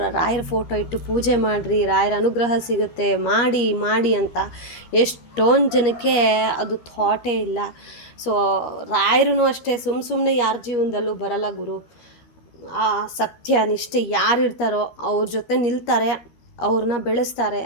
ರಾಯರ ಫೋಟೋ ಇಟ್ಟು ಪೂಜೆ ಮಾಡಿರಿ, ರಾಯರ ಅನುಗ್ರಹ ಸಿಗುತ್ತೆ, ಮಾಡಿ ಅಂತ. ಎಷ್ಟೊಂದು ಜನಕ್ಕೆ ಅದು ಥಾಟೇ ಇಲ್ಲ. ಸೊ ರಾಯರೂ ಅಷ್ಟೇ, ಸುಮ್ಮನೆ ಯಾರ ಜೀವನದಲ್ಲೂ ಬರಲ್ಲ ಗುರು. ಆ ಸತ್ಯ ನಿಷ್ಠೆ ಯಾರು ಇರ್ತಾರೋ ಅವ್ರ ಜೊತೆ ನಿಲ್ತಾರೆ, ಅವ್ರನ್ನ ಬೆಳೆಸ್ತಾರೆ.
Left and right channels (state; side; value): late; right; 13 ms